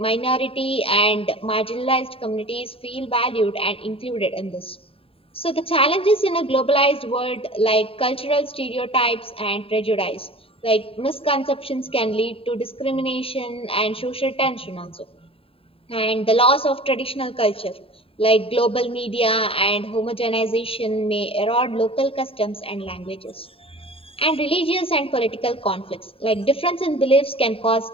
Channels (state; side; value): late; right; 0.27 ms